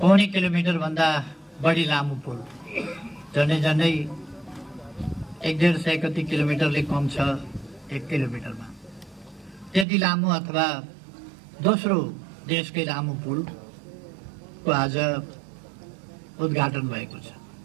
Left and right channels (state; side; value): drops out; left; at 9.9 s